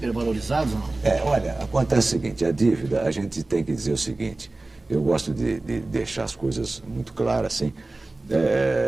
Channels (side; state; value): left; quieter; 3.0 dB